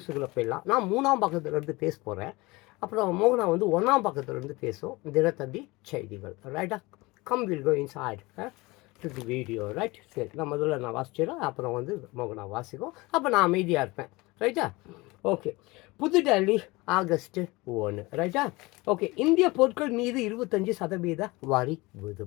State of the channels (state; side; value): quieter; right; 22.7 dB